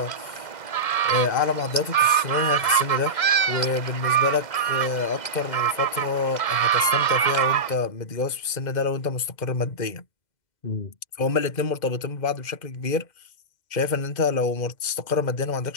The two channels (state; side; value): late; right; 2.0 ms